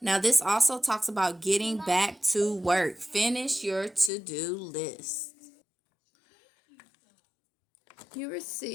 Now, this also talks about getting back to work. Finish your to-do list. You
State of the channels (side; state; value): right; drops out; at 4.1 s